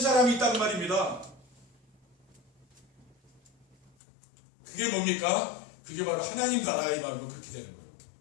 있단 말입니다. 그게 뭡니까? 그게 바로 하나님 나라의 마음으로 그렇게 되는 거예요.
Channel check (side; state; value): right; drops out; at 3.9 s